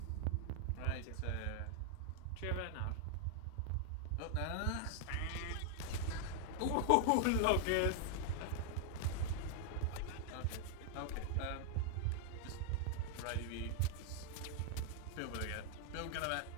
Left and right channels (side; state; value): both; different; correlation 0.00